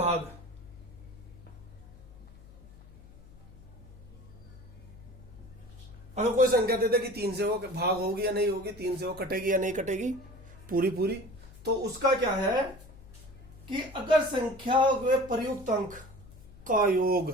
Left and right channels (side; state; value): left; noise; hum, 20 dB below the sound